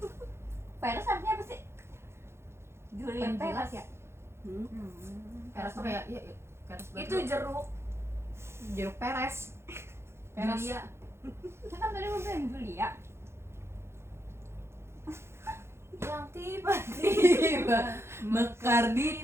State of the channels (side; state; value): left; late; 0.12 ms